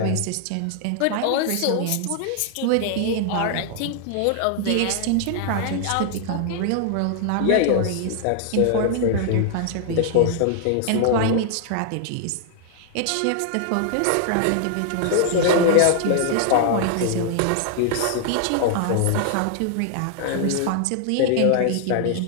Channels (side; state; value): both; different; correlation 0.00